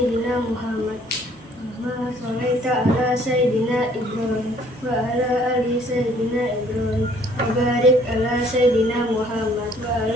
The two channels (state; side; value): normal; both; correlation 0.60